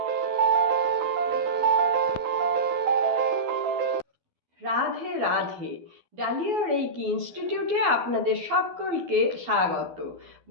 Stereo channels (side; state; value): left; late; 12 ms